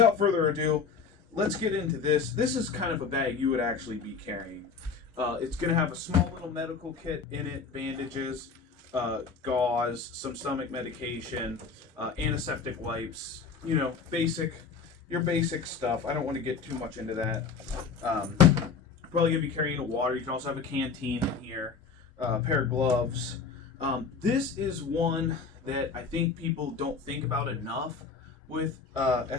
further ado, let's get into this. This is kind of a bag you would actually be carrying. It's going to have a small little medical kit in it, bandages, gauze, some stomach medication, antiseptic wipes, your basic stuff. I don't want to get too much into that. Probably going to be carrying a water. You can also have a canteen in here, a pair of gloves. This is one that I think people don't think about enough with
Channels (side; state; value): right; quieter; 5.4 dB